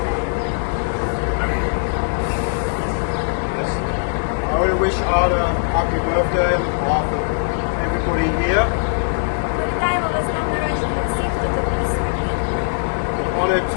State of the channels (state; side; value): silent; right; digital silence